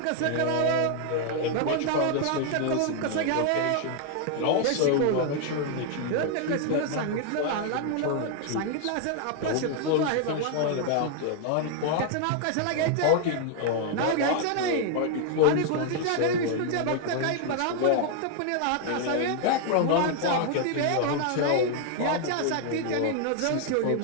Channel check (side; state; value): both; different; correlation 0.00